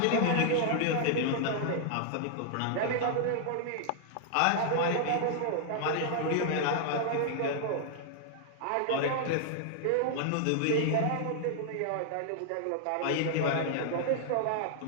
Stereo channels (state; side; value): different; both; correlation -0.01